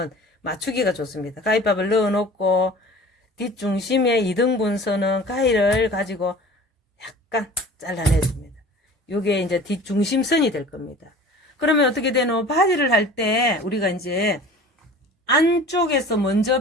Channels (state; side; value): normal; both; correlation 0.43